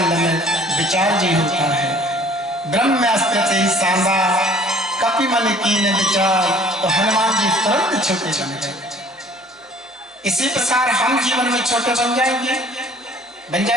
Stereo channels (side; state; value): both; normal; correlation 0.53